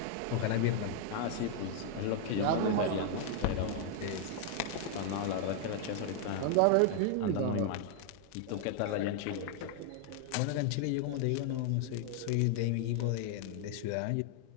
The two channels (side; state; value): both; different; correlation 0.00